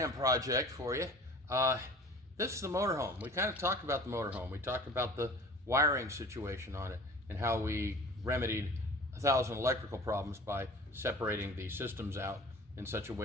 project for you. This is the motorhome. We kind of talked about the motorhome. We talked about the wiring situation on it and how we remedied 1,000 electrical problems by separating the systems out in such a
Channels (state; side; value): normal; both; correlation 0.43